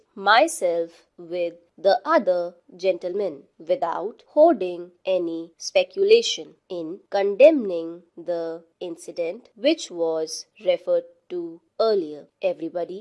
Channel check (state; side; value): identical; both; correlation 1.00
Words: myself with the other gentlemen without holding any speculation in condemning the incident which was referred to earlier.